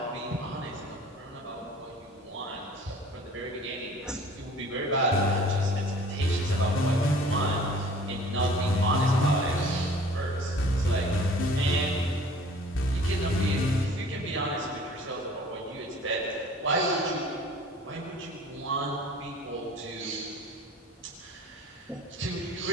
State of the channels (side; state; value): both; normal; correlation 0.48